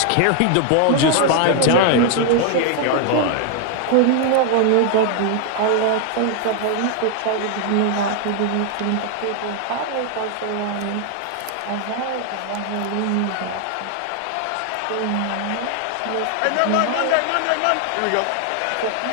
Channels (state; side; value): different; both; correlation 0.00